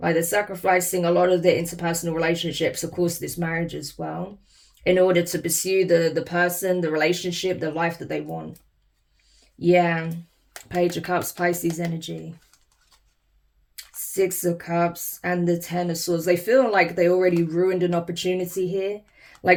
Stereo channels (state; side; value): identical; both; correlation 1.00